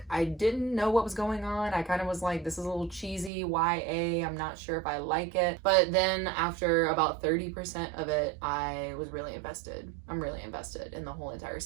I didn't know what was going on. I kind of was like, this is a little cheesy, YA, I'm not sure if I like it. But then after about 30% of it, I was really invested. I'm really invested in the whole entire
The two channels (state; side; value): drops out; left; at 3.3 s